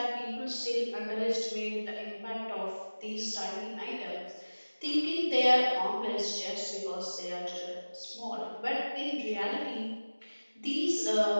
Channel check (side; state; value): both; inverted; correlation -1.00